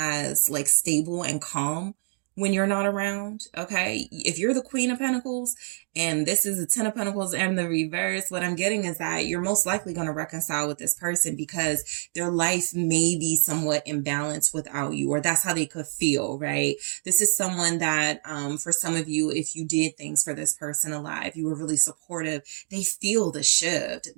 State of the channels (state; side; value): silent; left; 61 dB below the other